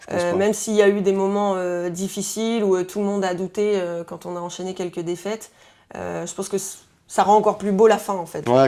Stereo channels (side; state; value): both; identical; correlation 1.00